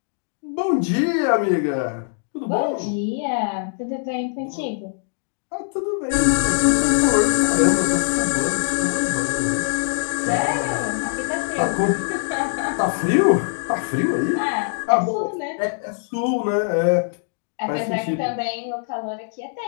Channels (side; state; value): right; silent; digital silence